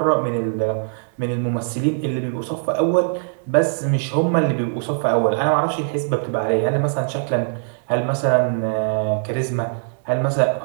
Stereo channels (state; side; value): silent; left; 65 dB below the other